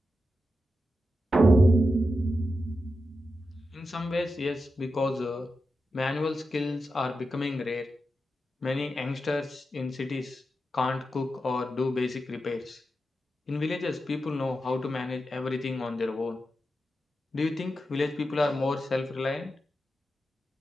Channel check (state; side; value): normal; both; correlation 0.89